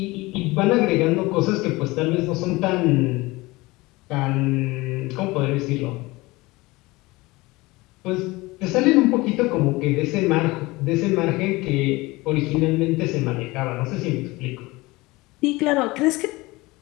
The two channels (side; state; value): right; quieter; 21.7 dB